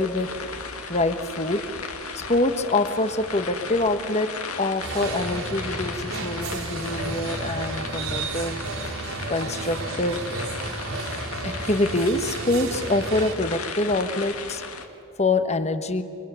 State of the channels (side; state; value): both; normal; correlation 0.32